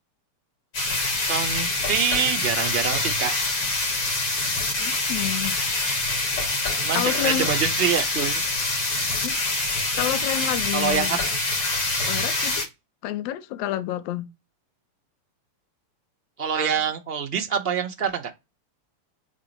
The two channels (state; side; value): late; right; 7.0 ms